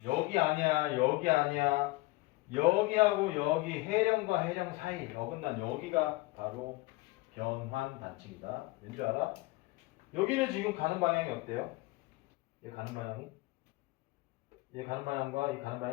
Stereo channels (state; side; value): quieter; right; 21.1 dB